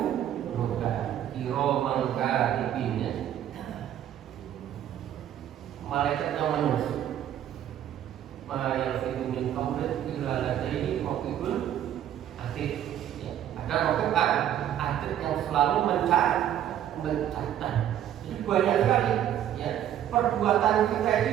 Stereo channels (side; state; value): left; quieter; 10.9 dB